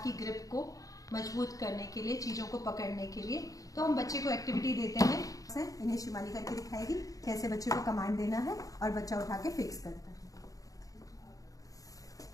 की ग्रिप को मजबूत करने के लिए, चीज़ों को पकड़ने के लिए। तो हम बच्चे को एक्टिविटी देते हैं, इन्हें शिवानी करके दिखाएगी कैसे बच्चे को कमांड देना है और बच्चा उठा के फिक्स करता है।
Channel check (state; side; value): late; right; 0.17 ms